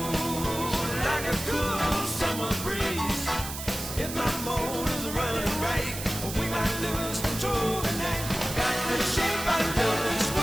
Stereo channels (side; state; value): right; noise; hiss, 8 dB below the sound